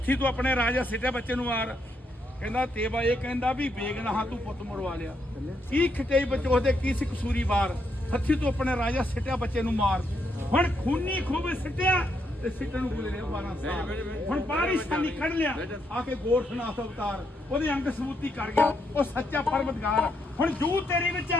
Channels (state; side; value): normal; both; correlation 0.77